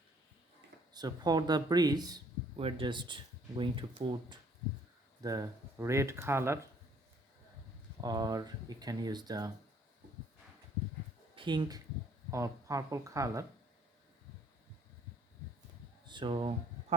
So for the breeze, we're just going to put the red color, or you can use the pink or purple color. So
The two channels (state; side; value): normal; both; correlation 0.61